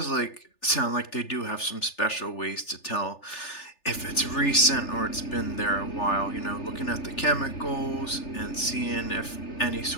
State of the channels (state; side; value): late; right; 3.4 ms